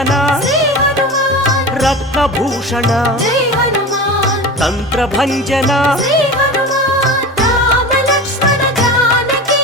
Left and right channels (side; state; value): both; normal; correlation 0.30